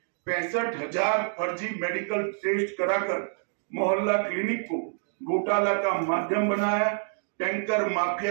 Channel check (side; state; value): left; silent; digital silence